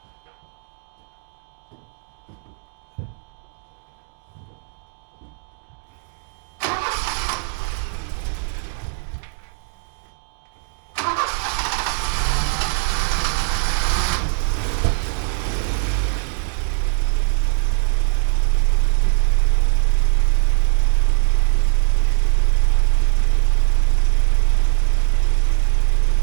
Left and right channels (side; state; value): left; silent; 65 dB below the other